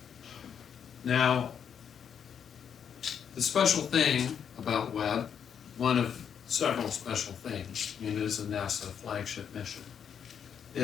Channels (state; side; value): quieter; right; 7.9 dB